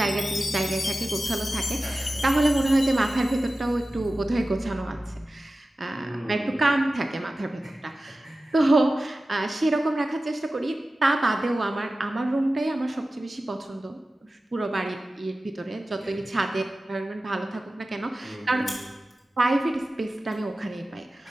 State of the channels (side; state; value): both; normal; correlation 0.95